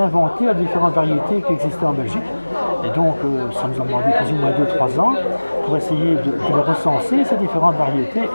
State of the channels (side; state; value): both; inverted; correlation -1.00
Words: de différentes variétés qui existaient en Belgique. Et donc, ça nous a demandé plus ou moins 2-3 ans pour essayer de les recenser, ces différentes variétés,